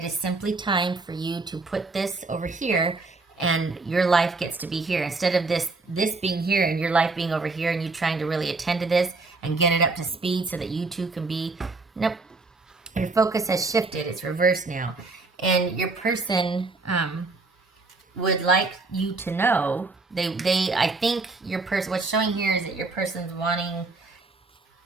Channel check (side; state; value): left; quieter; 3.7 dB